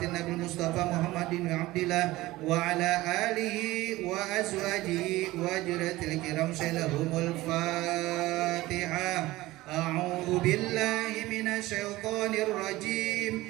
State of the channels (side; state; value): left; quieter; 18.2 dB